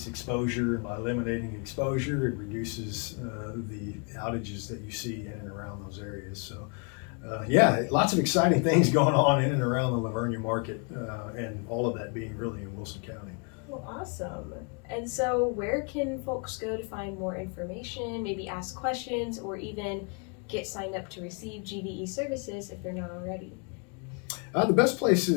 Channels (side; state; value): right; quieter; 36.1 dB